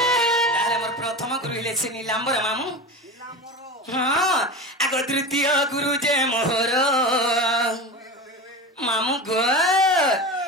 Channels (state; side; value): normal; both; correlation 0.27